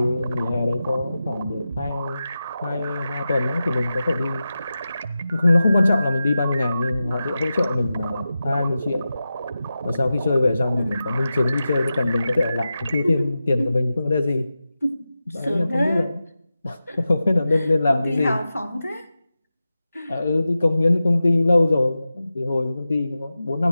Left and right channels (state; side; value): inverted; both; correlation -0.93